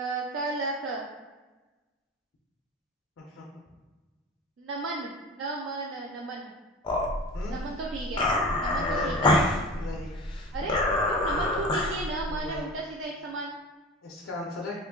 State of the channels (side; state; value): both; normal; correlation 0.34